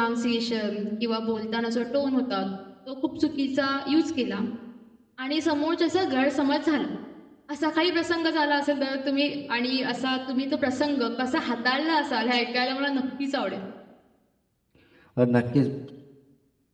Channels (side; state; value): both; identical; correlation 1.00